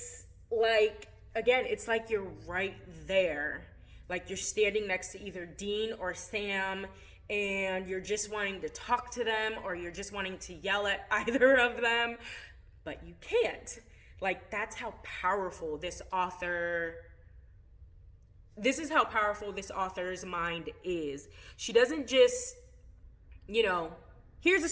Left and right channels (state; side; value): identical; both; correlation 1.00